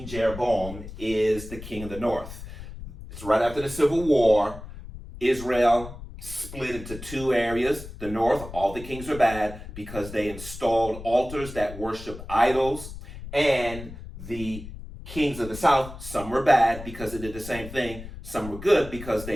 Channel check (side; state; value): left; noise; rumble, 12 dB below the sound